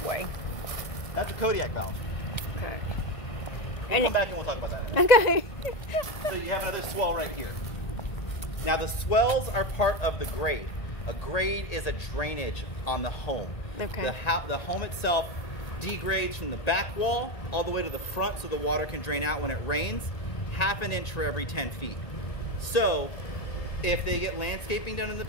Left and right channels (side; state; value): right; late; 1.9 ms